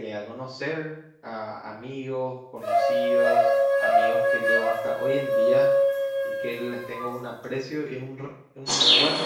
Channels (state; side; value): identical; both; correlation 1.00